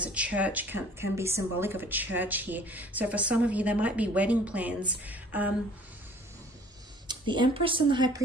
a church, can be symbolic of a church here. So for some of you, there might be wedding plans. The Empress and the High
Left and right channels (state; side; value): normal; both; correlation 0.52